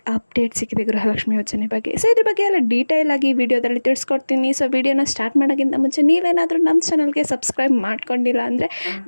ಅಪ್ಡೇಟ್ ಸಿಕ್ಕಿದೆ ಗೃಹಲಕ್ಷ್ಮಿ ಯೋಜನೆ ಬಗ್ಗೆ. ಸೊ ಇದ್ರ ಬಗ್ಗೆ ಎಲ್ಲ ಡೀಟೇಲ್ ಆಗಿ ವಿಡಿಯೋದಲ್ಲಿ ತಿಳಿಸ್ಕೊಡ್ತೀನಿ. ಸೊ ವಿಡಿಯೋನ ಸ್ಟಾರ್ಟ್ ಮಾಡೋಕ್ಕಿಂತ ಮುಂಚೆ ನೀವೇನಾದರೂ ನಮ್ಮ ಚಾನಲ್ಗೆ ಸಬ್ಸ್ಕ್ರೈಬ್ ಮಾಡ್ಕೊಂಡಿಲ್ಲ ಅಂದರೆ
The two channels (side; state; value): both; inverted; correlation -1.00